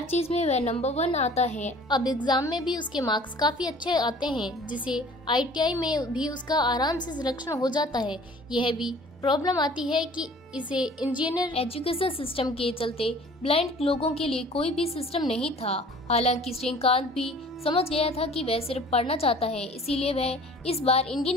चीज में वह नंबर 1 आता है। अब एग्जाम में भी उसके मार्क्स काफी अच्छे आते हैं, जिसे ITI में भी उसका आराम से सिलेक्शन हो जाता है। यह भी प्रॉब्लम आती है कि इसे इंजीनियर एजुकेशन सिस्टम के चलते ब्लाइंड लोगों के लिए कोई भी सिस्टम नहीं था। हालांकि श्रीकांत भी समझ गया था कि वह सिर्फ पढ़ना चाहता है, इसीलिए वह इस बार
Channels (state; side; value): normal; both; correlation 0.49